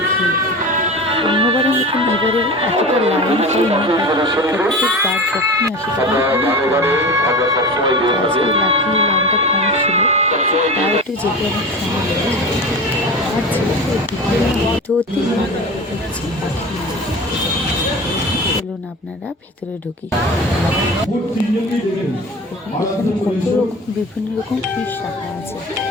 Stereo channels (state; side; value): normal; both; correlation 0.32